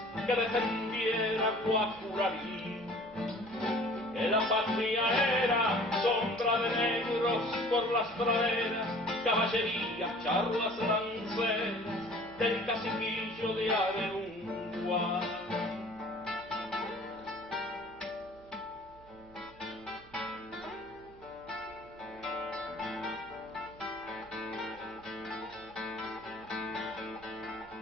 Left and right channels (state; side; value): noise; right; hum, 24 dB below the sound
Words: que defendiera Guacurarí. Que la patria era sombra de negros por las praderas, caballería, charlas lanceras del caciquillo de Averungua.